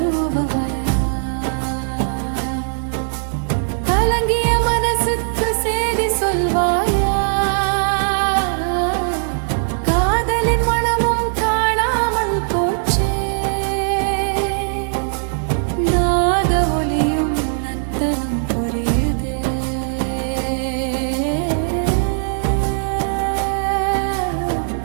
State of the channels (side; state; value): left; silent; 66 dB below the other